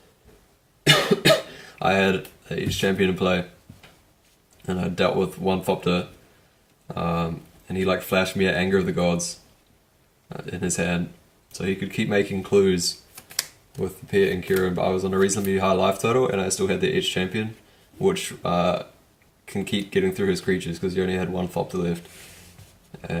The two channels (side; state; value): both; identical; correlation 1.00